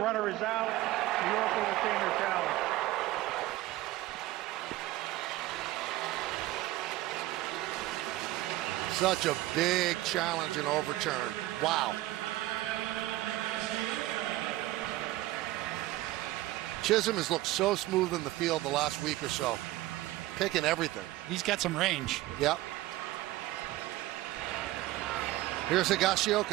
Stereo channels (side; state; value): left; quieter; 16.9 dB